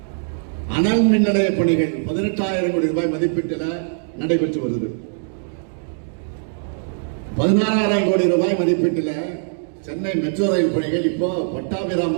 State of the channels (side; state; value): left; silent; digital silence